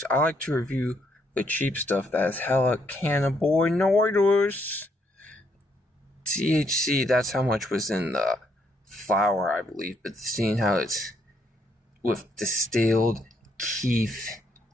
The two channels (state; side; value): normal; both; correlation 0.73